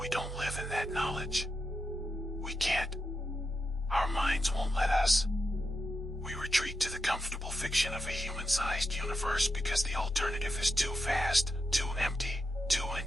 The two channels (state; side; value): normal; both; correlation 0.87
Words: don't live in that knowledge. We can't. Our minds won't let us. We retreat to the comfortable fiction of a human-sized universe because the alternative is too vast, too empty, too